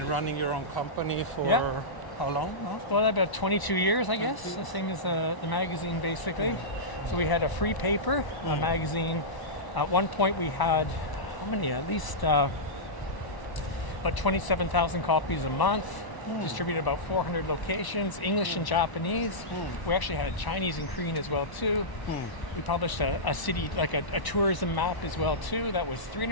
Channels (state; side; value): late; right; 1.0 ms